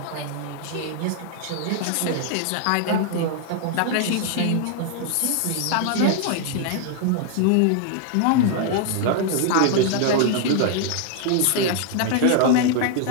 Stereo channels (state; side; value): different; both; correlation -0.01